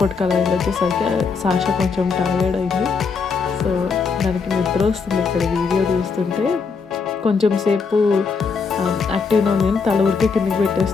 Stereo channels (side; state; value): right; quieter; 5.2 dB